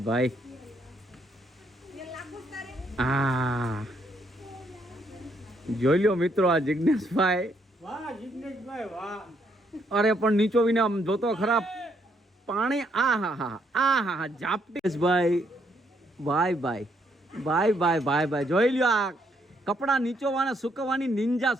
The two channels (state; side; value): normal; both; correlation 0.72